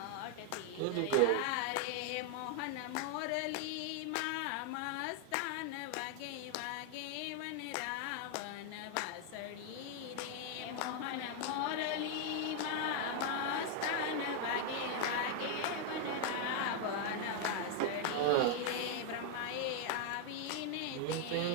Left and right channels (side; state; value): both; different; correlation 0.00